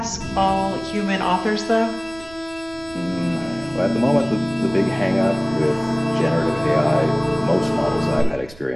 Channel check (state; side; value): noise; right; rumble, 22 dB below the sound